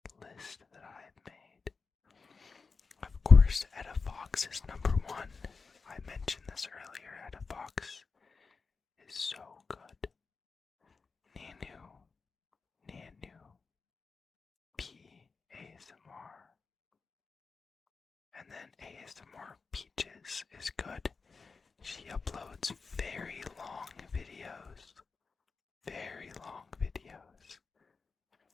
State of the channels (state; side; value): quieter; right; 4.7 dB